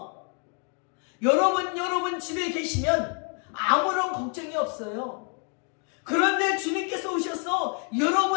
여러분 집에 계시면 아무런 걱정이 없어요. 그런데 주님께서 오셔서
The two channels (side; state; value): right; quieter; 39.7 dB